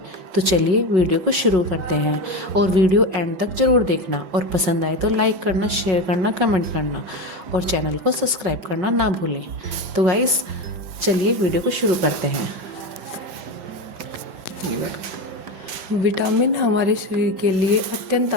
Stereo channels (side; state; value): left; late; 5.4 ms